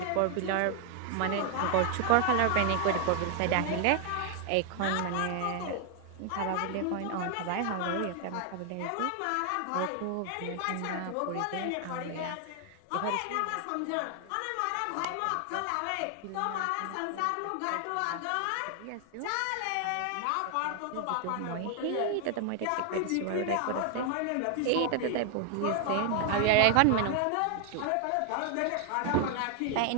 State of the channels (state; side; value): different; both; correlation 0.00